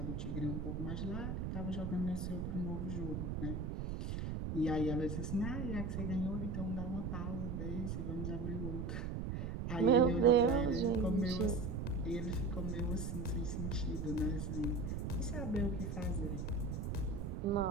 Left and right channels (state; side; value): noise; right; rumble, 3 dB below the sound